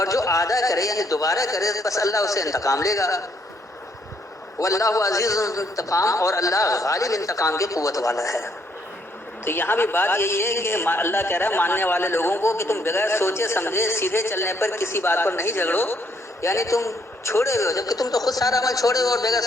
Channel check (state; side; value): normal; both; correlation 0.70